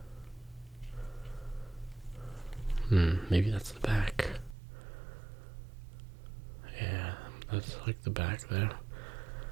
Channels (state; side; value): drops out; left; at 4.5 s